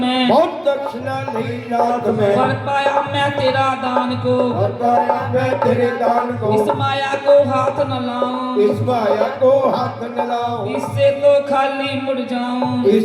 बहुत दक्षिणा ली नाथ में, कर पाया मैं तेरा दान को, और पाया मैं तेरे दान को, इस माया को हाथ न लाऊं, इस माया को हाथ न लाऊं, इससे तो खाली मुड़ जाऊं,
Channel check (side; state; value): both; identical; correlation 1.00